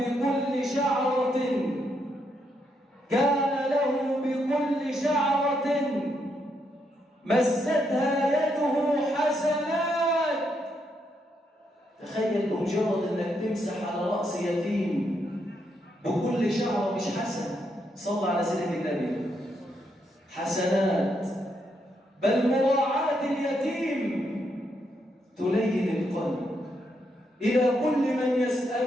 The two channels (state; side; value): normal; both; correlation 0.78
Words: شعرة مستها يده حسنات. تخيل بمجرد انك تمسح على رأس يتيم بكل شعرة مش حسنة، صلى على سيدنا النبي، حسنات. بل مراعاة اليتيم تلين القلب. إلى كل من